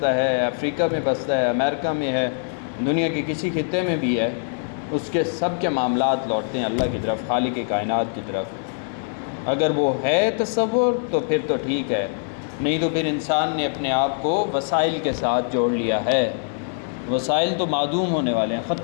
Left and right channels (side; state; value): right; silent; 63 dB below the other